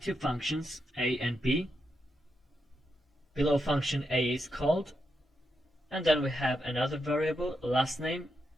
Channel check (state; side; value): normal; both; correlation 0.84